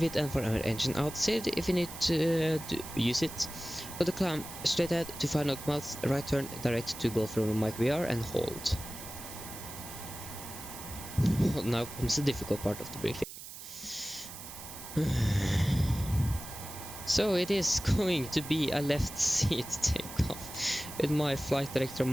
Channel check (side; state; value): right; noise; hiss, 12 dB below the sound